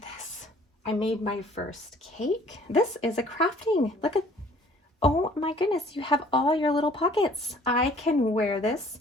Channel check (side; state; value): both; normal; correlation 0.55